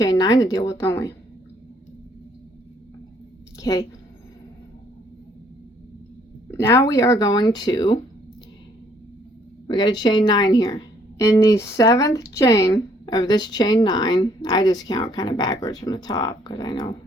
9 to deal with, don't we? Okay. Now we are going to, we got a chain 9 here. In the 7th chain of this chain 9, I just count kind of backwards from the top because I know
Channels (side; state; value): both; normal; correlation 0.65